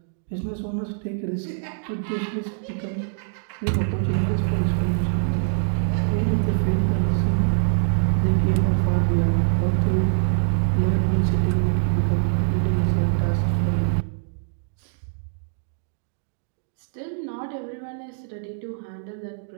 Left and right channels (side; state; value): left; silent; digital silence